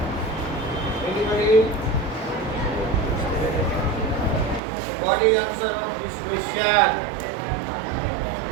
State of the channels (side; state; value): left; drops out; at 4.6 s